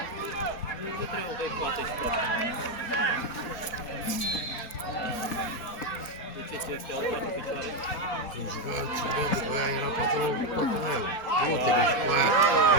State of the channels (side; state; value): right; late; 4.2 ms